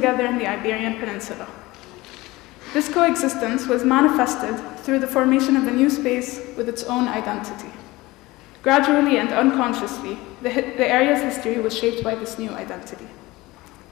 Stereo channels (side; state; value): right; quieter; 20.2 dB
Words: in the Iberian Peninsula. This coexistence was manifested through the formation of a new space with its own identity. Gradually and unconsciously, the area's history was shaped by this new identity.